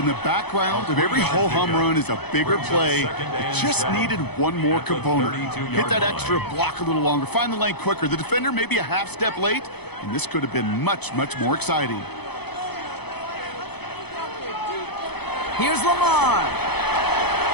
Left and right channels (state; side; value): late; right; 0.98 ms